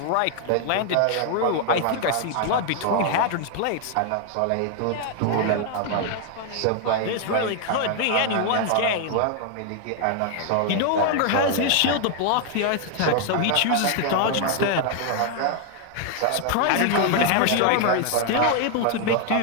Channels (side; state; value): both; different; correlation 0.00